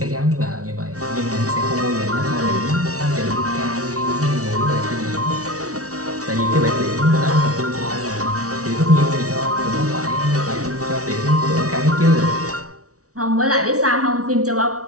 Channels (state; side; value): late; left; 0.66 ms